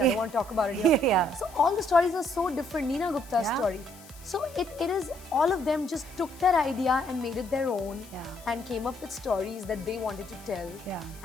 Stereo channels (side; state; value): left; noise; hiss, 21 dB below the sound